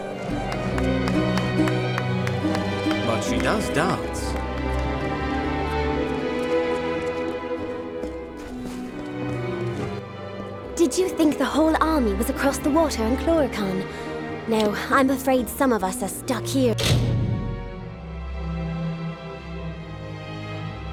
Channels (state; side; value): identical; both; correlation 1.00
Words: But she does dance. Did you think the whole army was across the water in Chloricon? No, I'm afraid some of us are stuck here.